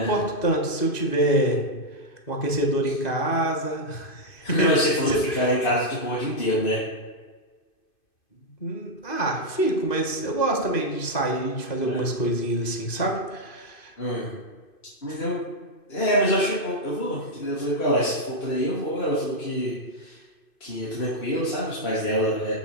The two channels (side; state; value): right; late; 2.5 ms